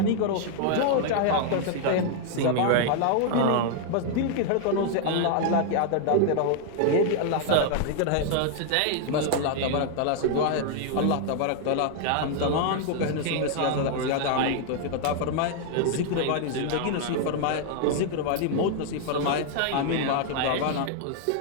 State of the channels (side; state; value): both; different; correlation 0.00